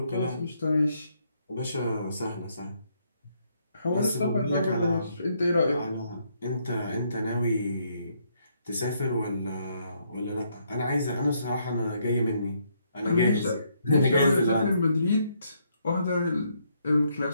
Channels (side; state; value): both; inverted; correlation -0.73